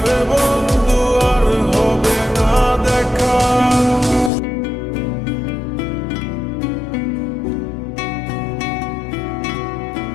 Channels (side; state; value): right; drops out; at 4.3 s